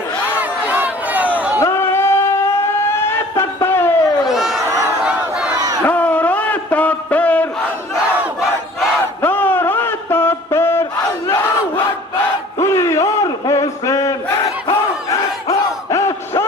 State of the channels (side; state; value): both; normal; correlation 0.49